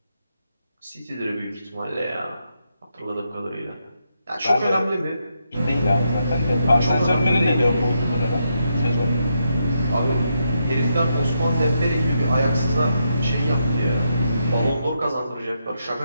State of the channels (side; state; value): both; inverted; correlation -0.81